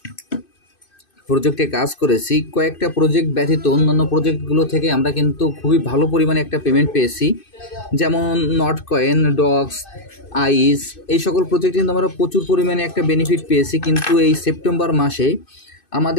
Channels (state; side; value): late; right; 2.6 ms